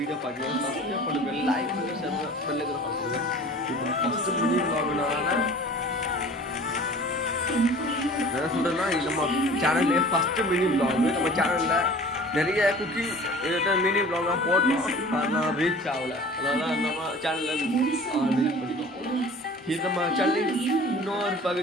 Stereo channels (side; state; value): both; normal; correlation 0.44